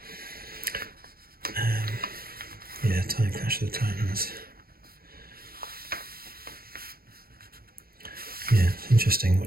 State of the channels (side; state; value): left; late; 0.44 ms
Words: Yeah, Clash of the Titans. interesting